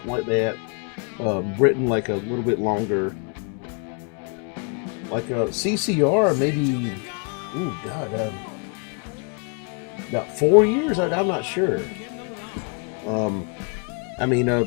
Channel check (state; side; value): quieter; right; 35.5 dB